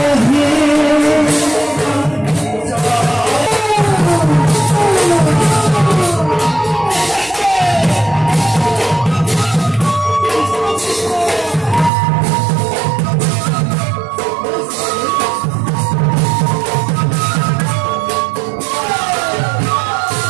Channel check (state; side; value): drops out; left; at 11.9 s